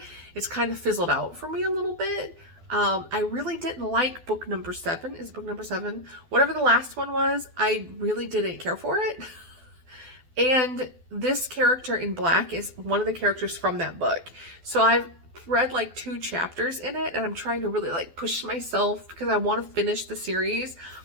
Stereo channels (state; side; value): late; left; 12 ms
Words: it's kind of fizzled out for me a little bit. I really didn't like book number 7. Is book number 7? Whatever the last one was, I really didn't care for it. And this character in Black is one of the characters from that book. So I've read like 2 chapters in it, and I'm trying to really like push myself because I want to finish the series,